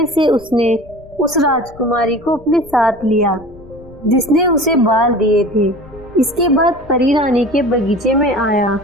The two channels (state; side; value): noise; left; rumble, 22 dB below the sound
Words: से उसने उस राजकुमारी को अपने साथ लिया जिसने उसे बाल दिए थे। इसके बाद परी रानी के बगीचे में आया।